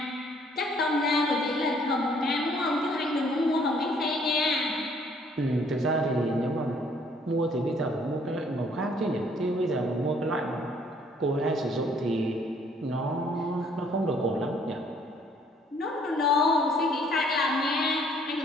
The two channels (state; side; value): normal; both; correlation 0.62